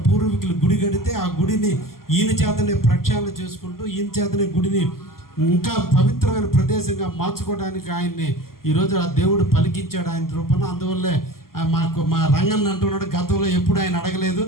పూర్వీకులు గుడి కడితే ఆ గుడిని ఈయన చేతనే ప్రక్షాళన చేసుకుంటూ ఈయన చేతనే గుడిని ఇంకా పవిత్రమైన ప్రదేశంగా మార్చుకోవడానికి ఆయన్ని ఈరోజు ఆ దేవుడు పలికించాడు ఆయన రూపంలో. అందువల్లే మా రంగన్న అంటున్నాడు, గతంలో ఎప్పుడు ఆయన అడగలేదు,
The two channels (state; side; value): late; right; 0.92 ms